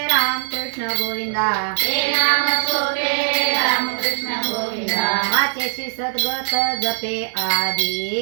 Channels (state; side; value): silent; left; digital silence